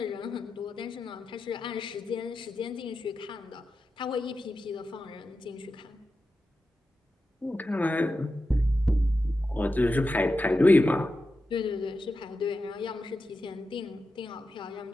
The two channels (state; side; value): normal; both; correlation 0.91